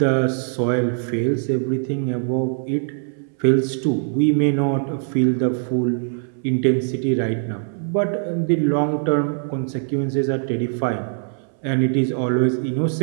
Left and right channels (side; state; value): left; silent; 64 dB below the other